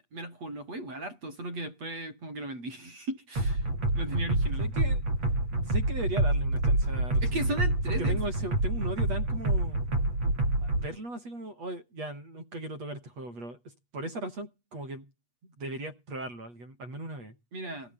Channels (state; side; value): late; left; 8.3 ms